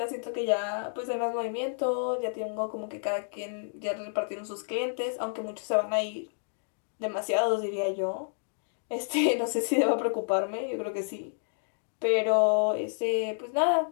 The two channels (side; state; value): right; silent; digital silence